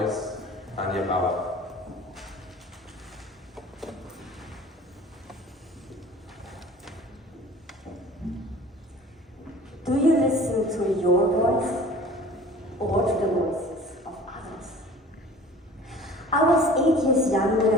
Danja Bauer. Do you listen to your voice or to the voices of others? I was 8 years young when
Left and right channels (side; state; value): both; normal; correlation 0.45